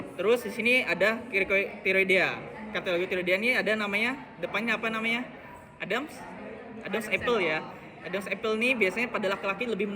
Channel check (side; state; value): both; identical; correlation 1.00